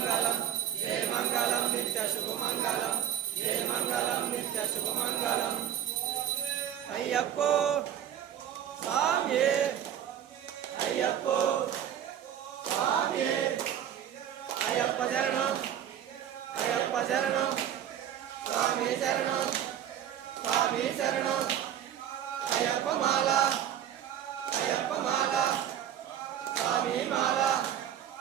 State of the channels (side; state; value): left; quieter; 10.1 dB